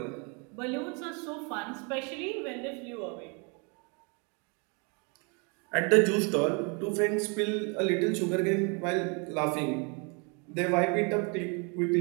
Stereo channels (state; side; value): quieter; left; 34.0 dB